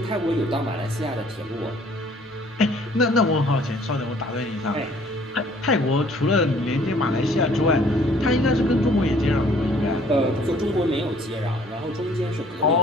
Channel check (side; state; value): both; normal; correlation 0.57